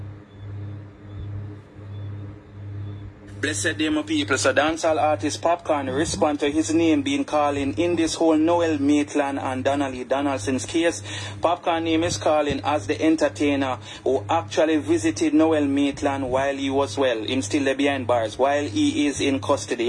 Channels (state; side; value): identical; both; correlation 1.00